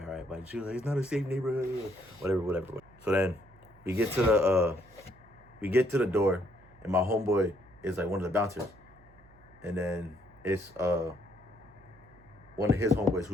But she was like, it's not a safe neighborhood. Whatever. So then we get to the door, and my homeboy is like one of the bouncers. And then it's one of his homeboys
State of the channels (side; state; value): right; noise; hum, 26 dB below the sound